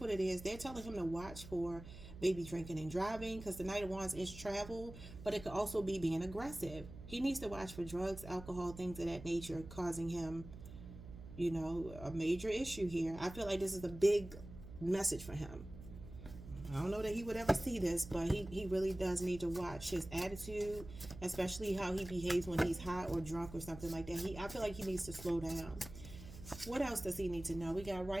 what it is. They're telling him to watch for maybe drinking and driving, because the Knight of Wands is travel, but it could also be being aggressive. He needs to watch for drugs, alcohol, things of that nature, causing him, you know, a major issue here. I feel like this is a big message for him. I don't know that he would ever see this, but he really does need to watch his attitude, especially how he behaves when he's hot or drunk or something like that. I feel like he needs to slow down. What else does he need to know? We got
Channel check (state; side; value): noise; right; hum, 14 dB below the sound